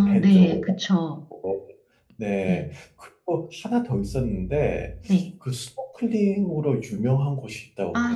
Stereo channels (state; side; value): identical; both; correlation 1.00